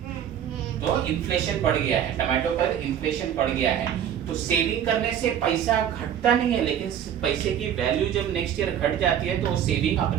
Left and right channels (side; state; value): left; quieter; 9.6 dB